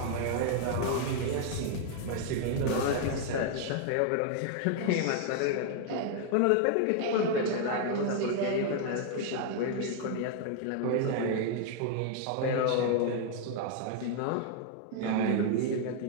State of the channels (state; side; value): different; both; correlation 0.00